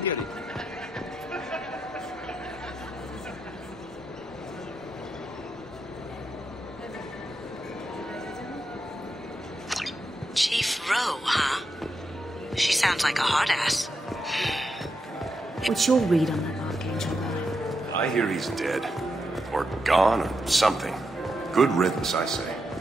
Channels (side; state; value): both; normal; correlation 0.85